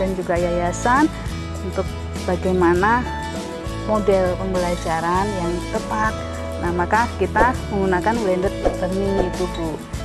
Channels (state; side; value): identical; both; correlation 1.00